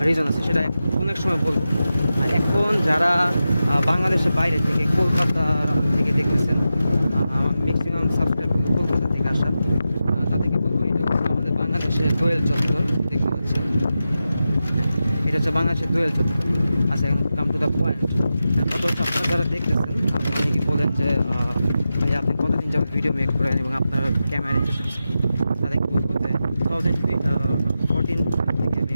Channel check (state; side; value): inverted; both; correlation -0.91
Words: রিজন আছে, সেটা অনেক সময় বলবো। আর এখন যারা বাংলাদেশের বাইরে থেকে, কলকাতা থেকে দেখতেছেন, ম্যাক্সিমাম সাবস্ক্রাইব কলকাতা থেকে আসা, তাদেরকে বলবো এটা হচ্ছে আমাদের বাংলাদেশের দোয়েল চত্বর। দেখতে পাচ্ছেন, এটা হচ্ছে বাংলাদেশের দোয়েল চত্বর। আচ্ছা, এখন কাম টু দ্য পয়েন্ট। কত হচ্ছে আপনারা যারা দেখতেছেন, আপনারা অনেকেই বলেন যে ভাই আপনি কতদিন যাবত ভিডিও মেক করেন এবং আপনার ক্যামেরা ইন্টারেস্ট কি, তাদেরকে বলবো যে 2014 থেকে আমি